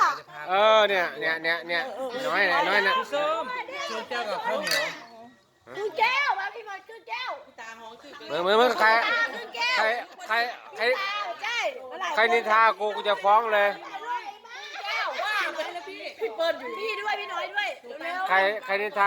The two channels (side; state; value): both; identical; correlation 1.00